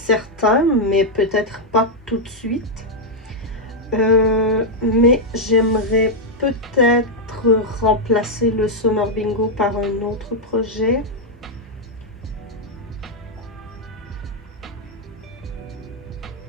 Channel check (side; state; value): both; normal; correlation -0.01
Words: mais peut-être pas tout de suite. Mais j'aimerais peut-être remplacer le Summer Bingo par un autre projet.